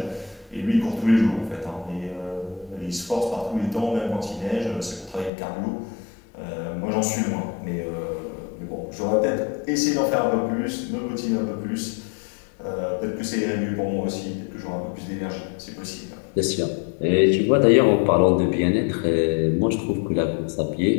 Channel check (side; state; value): right; drops out; at 5.3 s